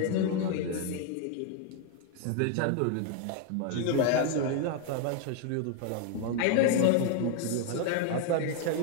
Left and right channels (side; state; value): both; different; correlation 0.01